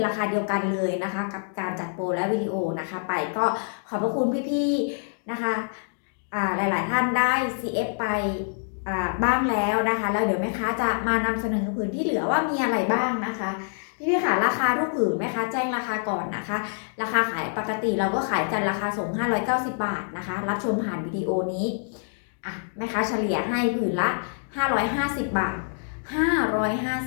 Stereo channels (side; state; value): right; silent; digital silence